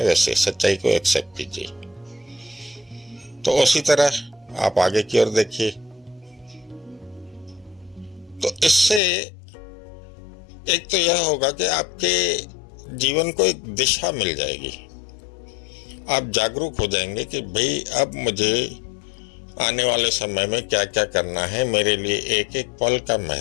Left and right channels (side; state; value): right; drops out; at 9.0 s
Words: वैसे सच्चाई को एक्सेप्ट कीजिए। तो उसी तरह आप आगे की ओर देखिए। तो इससे एक तो यह होगा कि आपके जीवन को एक दिशा मिल जाएगी। आप जागरूक हो जाएंगे कि भाई अब मुझे आने वाले समय में क्या क्या करना है, मेरे लिए एक एक पल का